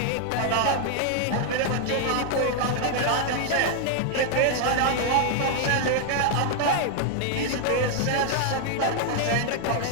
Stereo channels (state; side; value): different; both; correlation 0.00